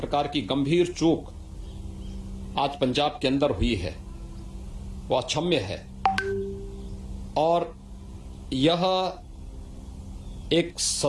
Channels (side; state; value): both; identical; correlation 1.00